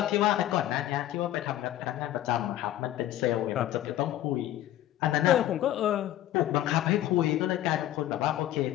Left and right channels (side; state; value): right; quieter; 13.3 dB